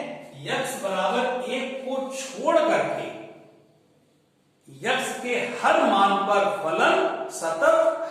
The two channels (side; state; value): both; identical; correlation 1.00